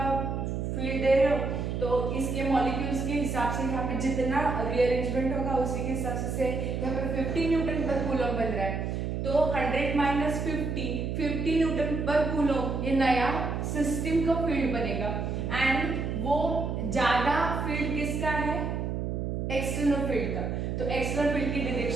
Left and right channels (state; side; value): noise; right; hum, 2 dB below the sound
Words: फील्ड दे रहे हो तो इसके मॉलिक्यूल्स के हिसाब से यहाँ पे जितना रीअरेंजमेंट होगा उसी के हिसाब से यहाँ पे 50 न्यूटन पर कूलम बन रहा है, तो 100 माइनस 50 न्यूटन पर कूलम ये नया सिस्टम का फील्ड बनेगा एंड वो ज्यादा फील्ड किसका है, एक्सटर्नल फील्ड का। तो एक्सटर्नल फील्ड की